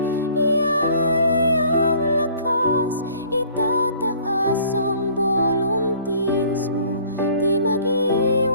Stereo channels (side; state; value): both; inverted; correlation -0.55